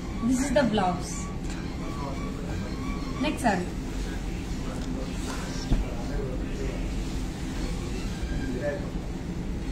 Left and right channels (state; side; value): identical; both; correlation 1.00